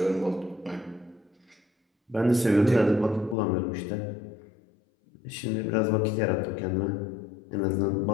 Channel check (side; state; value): right; drops out; at 3.4 s